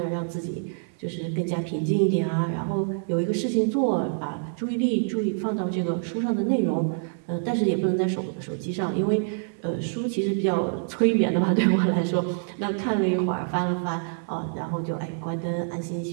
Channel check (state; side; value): silent; left; 60 dB below the other